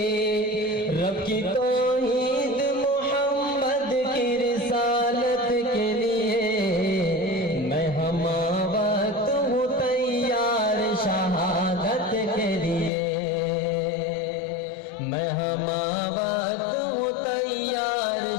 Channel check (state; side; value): drops out; right; at 12.9 s